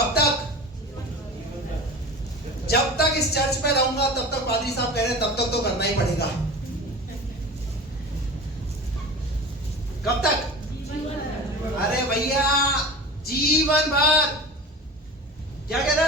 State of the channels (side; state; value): both; normal; correlation 0.34